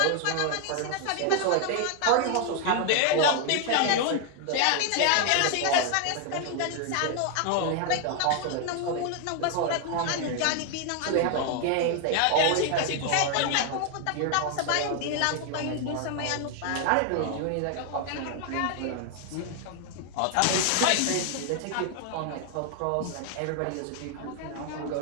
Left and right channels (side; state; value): both; different; correlation 0.00